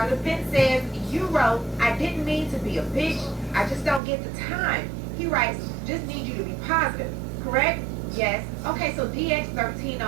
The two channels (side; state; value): left; drops out; at 4.0 s